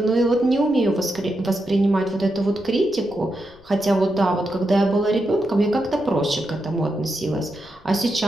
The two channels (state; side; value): noise; left; rumble, 26 dB below the sound